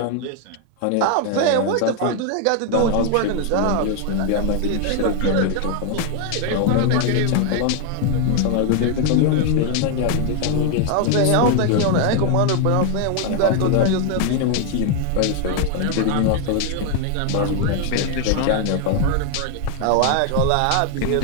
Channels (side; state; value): both; different; correlation 0.01